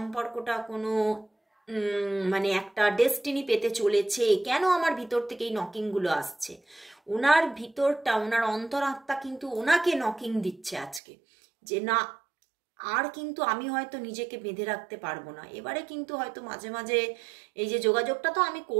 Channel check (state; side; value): drops out; left; at 11.0 s